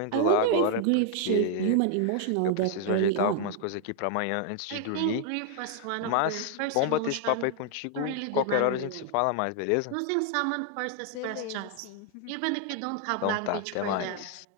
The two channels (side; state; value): both; different; correlation 0.00